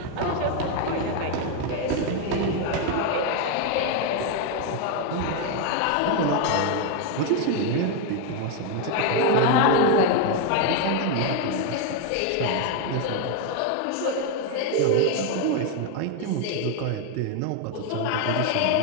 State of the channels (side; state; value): both; different; correlation 0.01